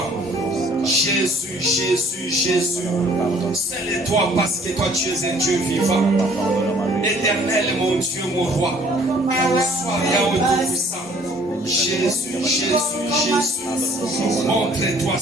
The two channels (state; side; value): normal; both; correlation 0.57